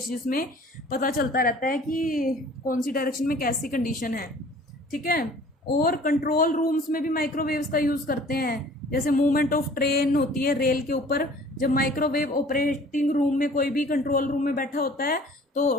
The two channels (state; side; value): normal; both; correlation 0.50